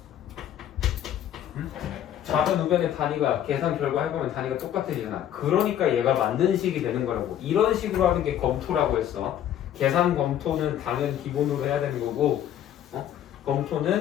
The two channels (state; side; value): quieter; right; 10.8 dB